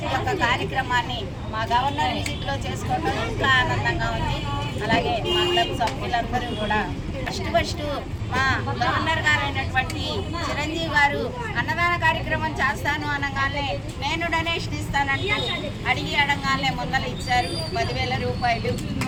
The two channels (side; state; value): both; identical; correlation 1.00